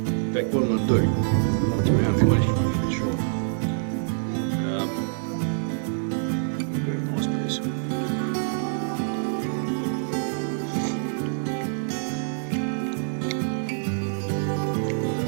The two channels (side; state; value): left; silent; 61 dB below the other